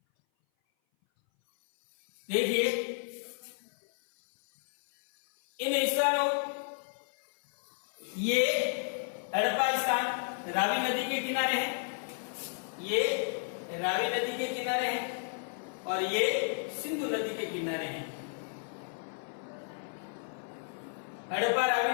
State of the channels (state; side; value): silent; right; 56 dB below the other